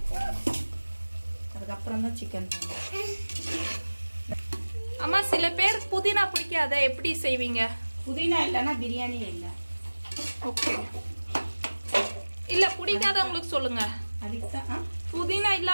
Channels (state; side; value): inverted; both; correlation -1.00